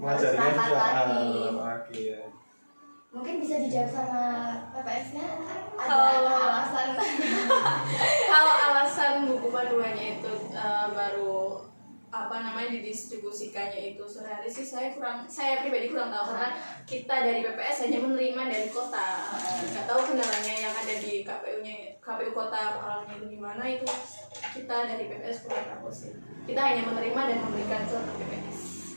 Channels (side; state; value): both; inverted; correlation -1.00